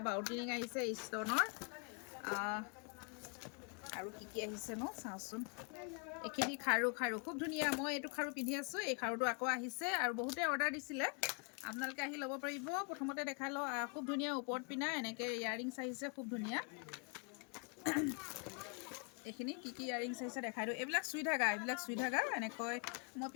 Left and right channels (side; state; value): right; quieter; 36.3 dB